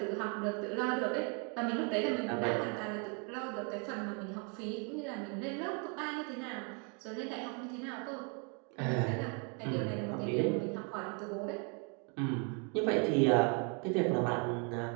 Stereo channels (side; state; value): left; quieter; 36.5 dB